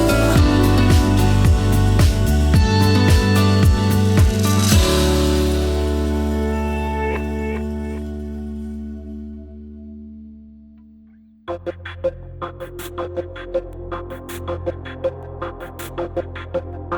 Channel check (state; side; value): identical; both; correlation 1.00